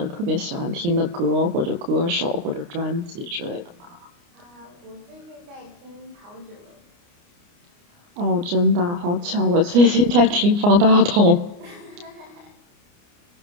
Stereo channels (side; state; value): left; late; 29 ms